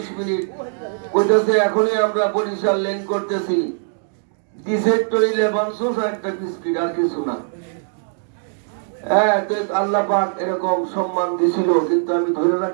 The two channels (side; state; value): left; silent; digital silence